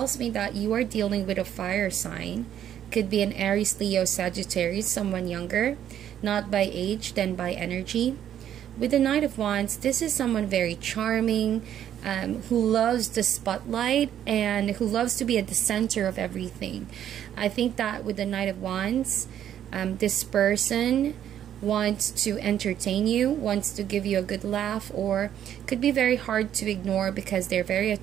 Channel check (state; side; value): quieter; left; 10.4 dB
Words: me that you are dealing with a fire sign. Could be an Aries, Leo, Sagittarius, someone younger, not by age, then by energy. With the Knight of Wands, this is someone very charming, who loves the spotlight and who loves to be at the center of everything. I think that with the Knight of Wands, this person wants to entertain you, wants to give you a good laugh, or could be very hard to ignore because they're very